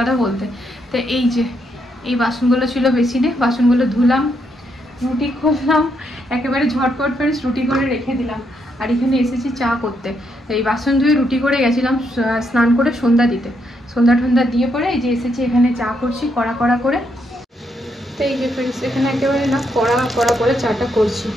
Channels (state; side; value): normal; both; correlation 0.77